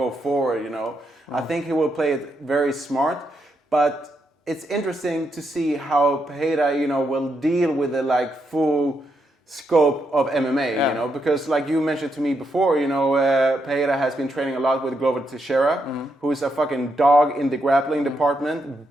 forward, I think he will play it very smart, but it's interesting to see how Pereira, will deal with the full scope of MMA, because you mentioned to me before, Pereira has been training a lot with Glover Teixeira, who is a fucking dog in the grappling department,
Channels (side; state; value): both; normal; correlation 0.80